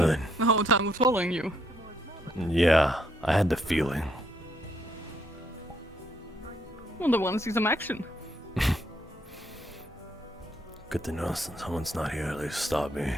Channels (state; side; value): normal; both; correlation 0.72